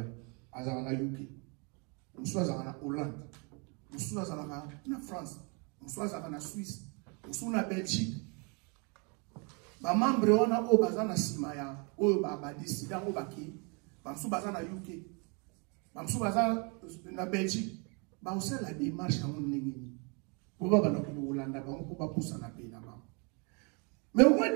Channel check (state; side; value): quieter; left; 33.3 dB